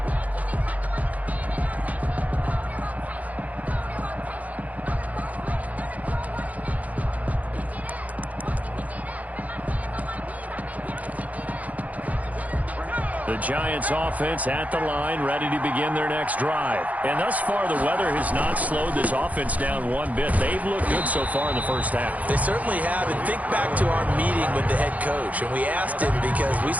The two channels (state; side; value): late; left; 0.074 ms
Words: The Giants offense at the line, ready to begin their next drive. And thus far, the weather has not slowed this offense down one bit. They've looked good so far in the first half. They certainly have. And think back to our meeting with the head coach. And we asked him because we